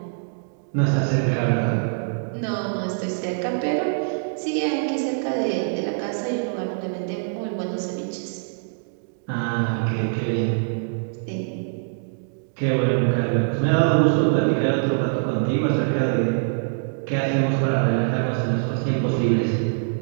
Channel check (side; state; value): left; silent; digital silence